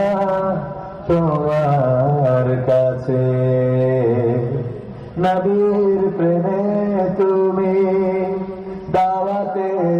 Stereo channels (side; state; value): both; identical; correlation 1.00